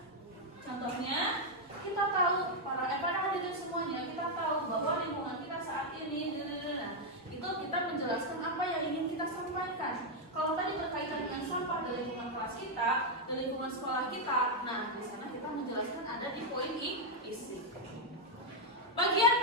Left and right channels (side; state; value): both; normal; correlation 0.00